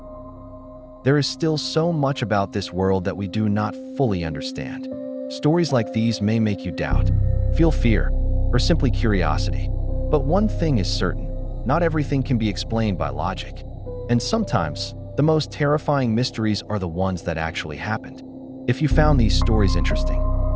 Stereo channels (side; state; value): both; identical; correlation 1.00